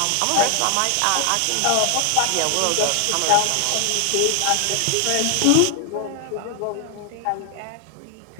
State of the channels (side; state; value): both; different; correlation 0.00